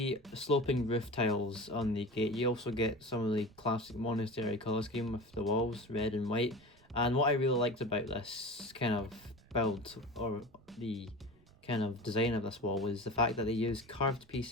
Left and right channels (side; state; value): right; noise; rumble, 29 dB below the sound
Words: sloping roof tiles on the gate, you also get some of the classic monastery colour scheme with the walls, red and white. And what I really liked about this kind of build, or the kind of design of this wall, was the fact that they used curved